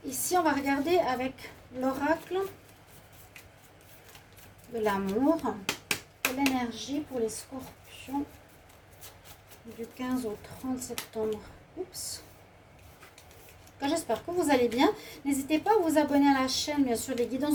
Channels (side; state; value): both; identical; correlation 1.00